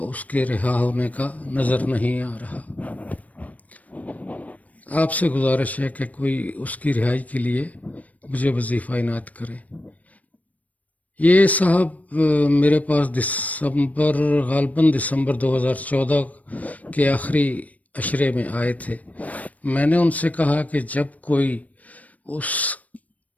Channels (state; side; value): late; right; 0.071 ms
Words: اس کے رہا ہونے کا نظر نہیں آ رہا۔ آپ سے گزارش ہے کہ کوئی اس کی رہائی کے لیے مجھے وظیفہ عنایت کرے۔ یہ صاحب میرے پاس غالباً دسمبر 2014 کے آخری عشرے میں آئے تھے۔ میں نے ان سے کہا کہ جب کوئی اس